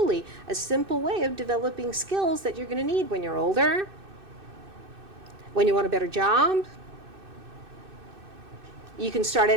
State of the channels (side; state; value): left; late; 2.6 ms